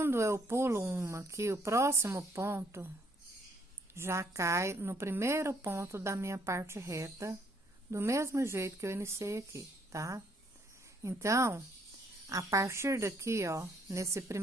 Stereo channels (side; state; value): both; normal; correlation 0.67